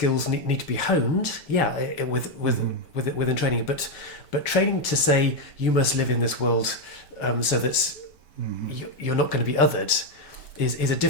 need to be honed, within training. But training to say you must live in this world so that you're not going to be othered is a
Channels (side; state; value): right; late; 5.2 ms